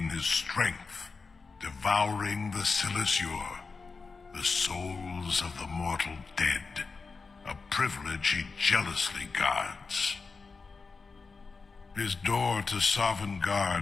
his strength, devouring the Silesure, the souls of the mortal dead, a privilege he jealously guards. His door to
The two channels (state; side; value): quieter; right; 4.5 dB